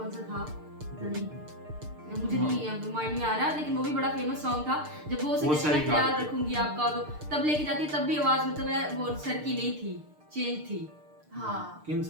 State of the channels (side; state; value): left; late; 6.6 ms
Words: सा था पता नहीं, मुझे नहीं माइंड में आ रहा, लेकिन वो भी बड़ा फेमस सॉन्ग था। जब वो उसे वो कहते सही हैं कहा। याद रखूंगी आपका, तो तब लेके जाती है तब भी आवाज मतलब है वो सर की नहीं थी, चेंज थी। हाँ किन